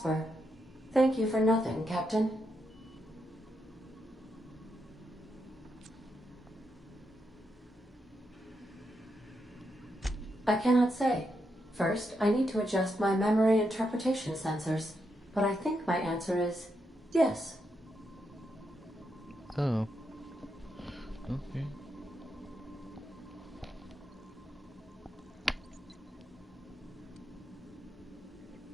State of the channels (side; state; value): both; normal; correlation 0.82